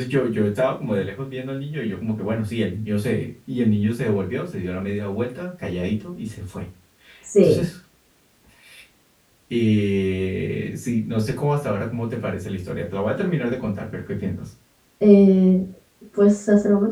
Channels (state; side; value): identical; both; correlation 1.00